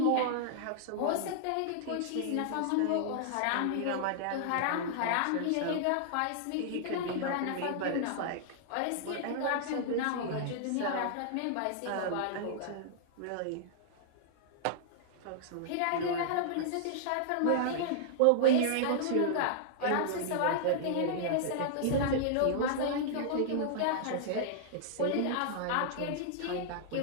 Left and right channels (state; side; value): different; both; correlation -0.01